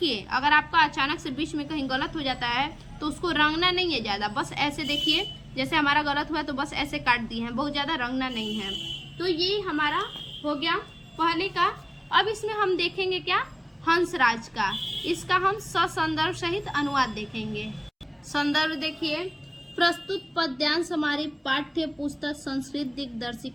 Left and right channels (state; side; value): identical; both; correlation 1.00